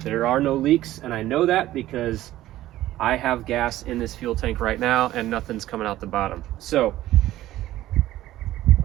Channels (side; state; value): left; quieter; 14.8 dB